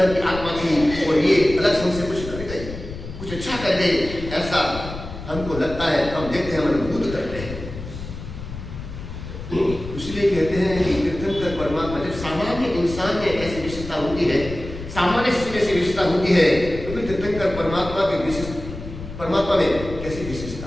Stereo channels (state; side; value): noise; left; rumble, 10 dB below the sound